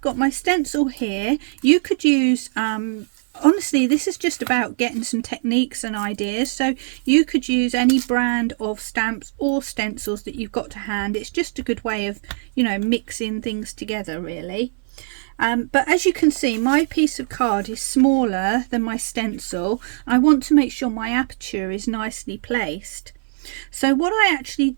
got my stencil here. You could use honestly, this is just about getting some techniques and ideas, so you could use any brand of stamps or stencils that you've got to hand. It's just a good way of, you know, mixing things together really. But as you can see, my piece of card is smaller than my stencil. I want to make sure my aperture is nicely placed. So what I actually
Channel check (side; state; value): left; silent; 58 dB below the other